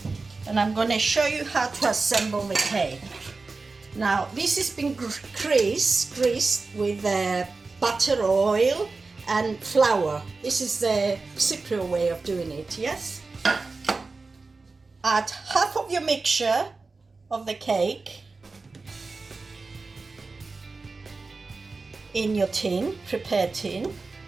And I'm gonna show you how to assemble the cake. Now, this has been greased with butter, oil and flour. This is the Cypriot way of doing it, yes? Add half of your mixture of the cake in your tin, prepared tin.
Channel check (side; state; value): left; quieter; 3.9 dB